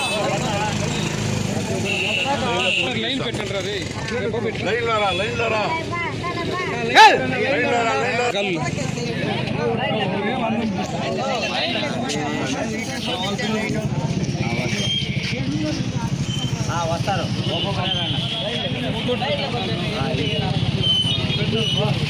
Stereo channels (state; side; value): identical; both; correlation 1.00